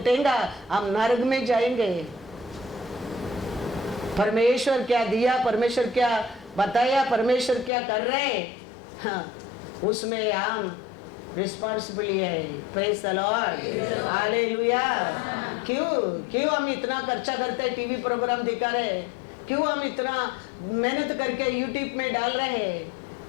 हम नरक में जाएंगे। परमेश्वर क्या दिया, परमेश्वर क्या बताया, परमेश्वर क्या कर रहे, हाँ, उसमें हम रिस्पॉन्सिबिलिटी है। Praise the Lord, hallelujah. क्यों हम इतना खर्चा करते हैं, टीवी प्रोग्राम दिखा रहे? क्यों हम इतना मेहनत करके यूट्यूब में डाल रहे हैं?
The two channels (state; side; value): drops out; right; at 7.7 s